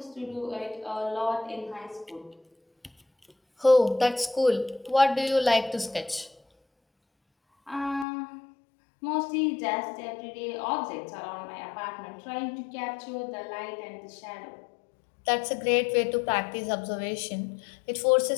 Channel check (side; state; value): right; drops out; at 8.1 s